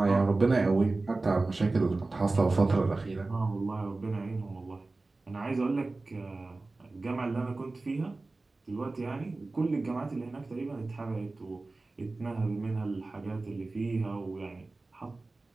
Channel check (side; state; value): left; quieter; 3.4 dB